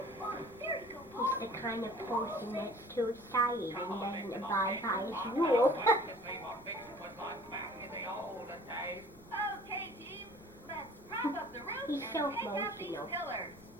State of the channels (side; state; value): both; normal; correlation 0.48